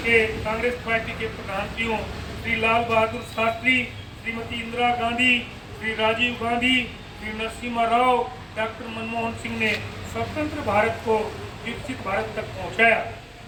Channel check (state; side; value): identical; both; correlation 1.00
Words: के कांग्रेस पार्टी के प्रधानमंत्रियों श्री लाल बहादुर शास्त्री, श्रीमती इंदिरा गांधी, श्री राजीव गांधी, श्री नरसिम्हा राव, डॉक्टर मनमोहन सिंह ने स्वतंत्र भारत को विकसित भारत तक पहुंचाया।